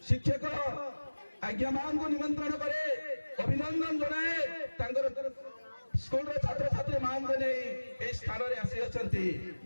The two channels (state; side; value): inverted; both; correlation -1.00